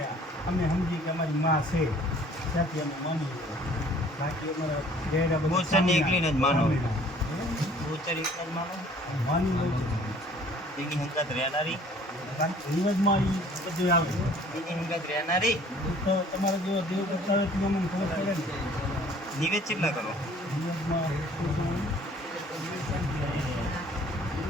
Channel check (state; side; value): normal; both; correlation 0.54